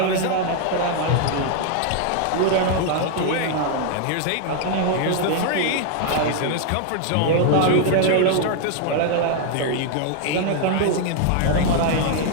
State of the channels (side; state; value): both; different; correlation 0.00